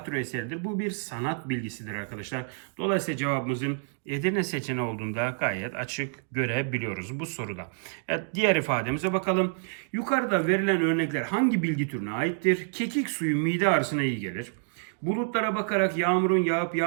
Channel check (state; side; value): silent; left; digital silence